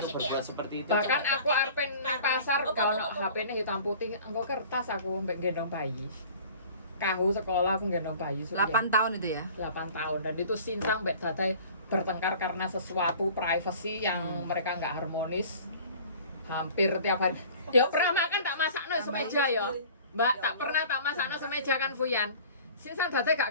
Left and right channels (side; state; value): both; inverted; correlation -0.46